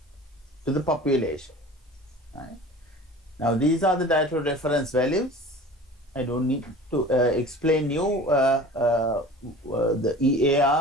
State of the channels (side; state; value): both; normal; correlation 0.41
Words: to the population. Right? Now these are the dietary reference values. I don't need to explain you the